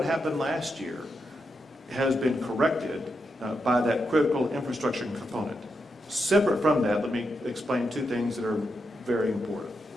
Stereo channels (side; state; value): both; normal; correlation 0.84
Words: happened last year has been corrected by that critical infrastructure component. Separate from that, let me explain two things that are very important.